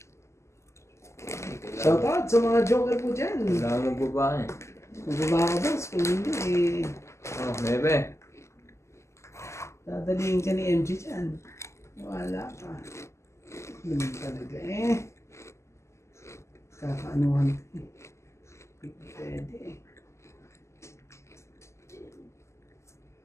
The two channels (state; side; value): late; right; 0.13 ms